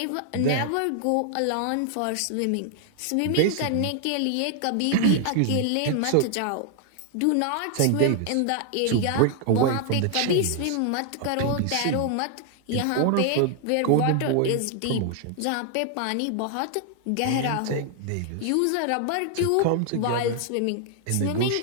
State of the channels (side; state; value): both; different; correlation 0.00